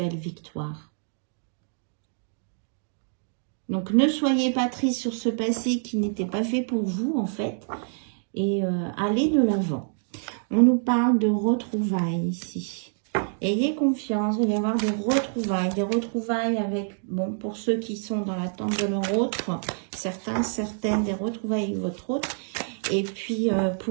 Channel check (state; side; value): silent; left; digital silence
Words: victoire. Donc ne soyez pas triste sur ce passé qui n'était pas fait pour vous en fait. Et allez de l'avant. On nous parle de retrouvailles ici. Ayez confiance, il va y avoir des retrouvailles avec, bon, pour ceux qui sont dans l'attente de leur autre, certaines, des retrouvailles avec votre autre. Et puis,